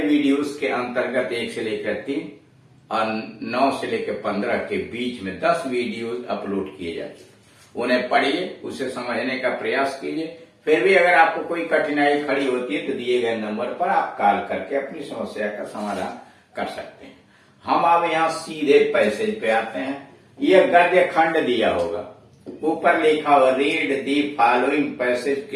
वीडियोस के अंतर्गत 1 से लेकर 3 और 9 से लेकर 15 के बीच में 10 वीडियोस अपलोड किए जाते हैं। उन्हें पढ़िए, उसे समझने का प्रयास कीजिए। फिर भी अगर आपको कोई कठिनाई खड़ी होती है तो दिए गए नंबर पर आप कॉल करके अपनी समस्या का समाधान कर सकते हैं। हम अब यहाँ सीधे पैसेज पे आते हैं। यह गद्य खंड दिया होगा, ऊपर लिखा हुआ read the following passage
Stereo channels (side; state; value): both; identical; correlation 1.00